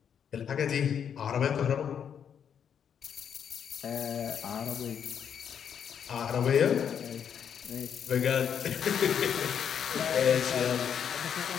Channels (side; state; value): right; quieter; 8.1 dB